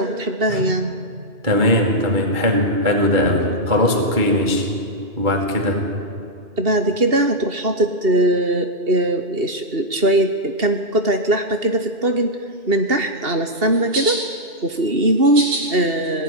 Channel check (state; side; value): late; left; 2.7 ms